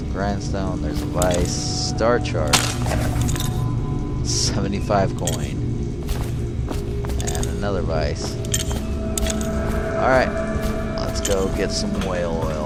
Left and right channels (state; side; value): identical; both; correlation 1.00